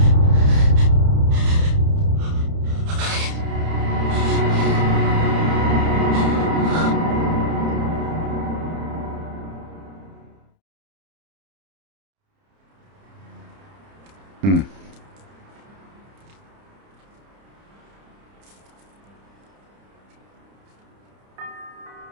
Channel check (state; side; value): late; left; 30 ms